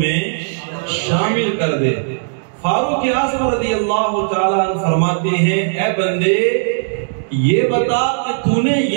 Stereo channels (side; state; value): left; silent; digital silence